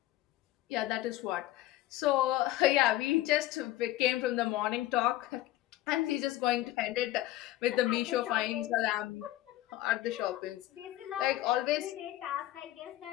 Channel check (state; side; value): quieter; right; 15.6 dB